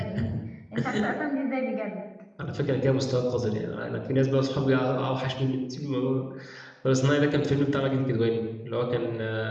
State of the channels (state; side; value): identical; both; correlation 1.00